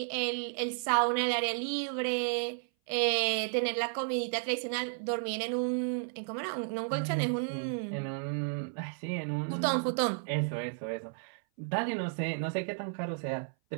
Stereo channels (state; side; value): silent; left; 56 dB below the other